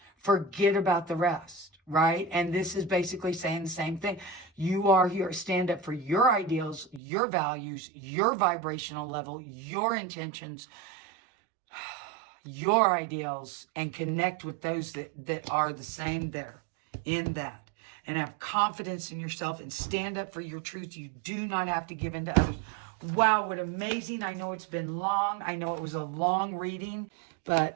Forget about the rest, right? And this is basically saying the same thing. You are here to stand up for your ideals, your values, your vibrational level, your intentions, your ideals, and connect with those that are the same there in that, and have confidence in yourself and stand up for your truth. You do not have to give in to others. Wow, what amazing. I know it's been long. I know it was a long reading,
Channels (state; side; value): drops out; left; at 7.0 s